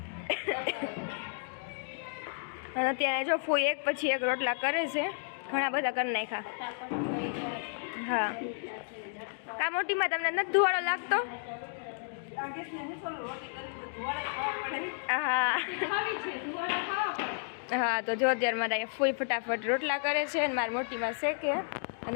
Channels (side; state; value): right; silent; digital silence